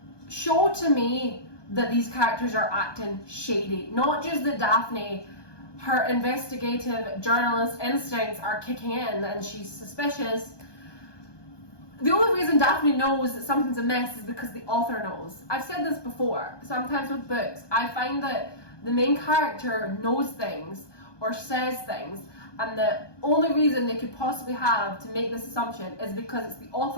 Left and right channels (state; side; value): late; right; 1.2 ms